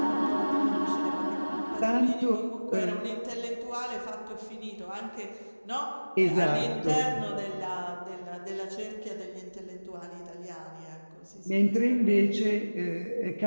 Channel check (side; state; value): both; inverted; correlation -1.00